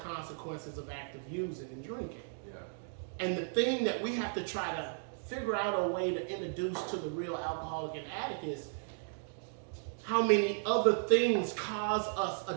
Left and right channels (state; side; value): silent; left; digital silence